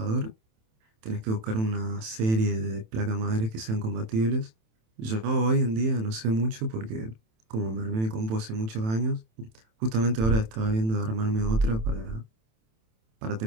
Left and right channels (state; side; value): late; left; 27 ms